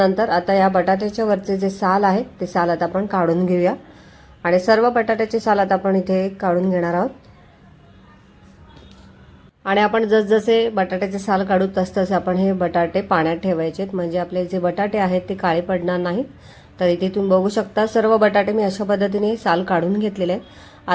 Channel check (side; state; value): both; identical; correlation 1.00